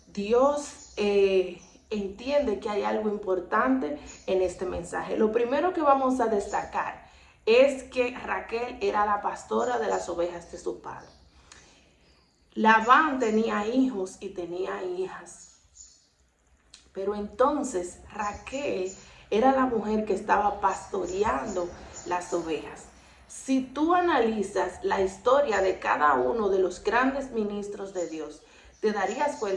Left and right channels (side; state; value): both; identical; correlation 1.00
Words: Dios entiende que hay algo importante en este mensaje. Lo primero que vamos a destacar es que Raquel era la pastora de las ovejas de su padre. Labán tenía hijos y tenía hijas, pero entonces Raquel era la mujer que estaba pastoreando las ovejas. Si tú analizas la historia de cada uno de los grandes ministros de Dios, te darías